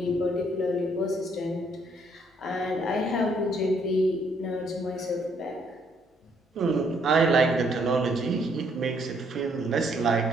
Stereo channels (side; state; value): both; normal; correlation 0.69